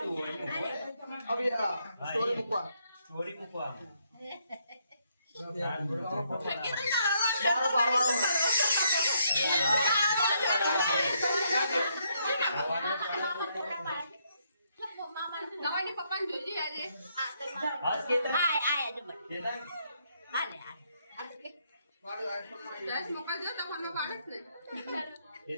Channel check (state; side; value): inverted; both; correlation -0.74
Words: તું. અભી આ સ્ટોરી મૂકવા. સ્ટોરી મૂકવા. બારો બારો. ગવાઈને પપ્પાને જોઈજે આજે. આ તો આય આય આજે બસ. હાલે હાલે.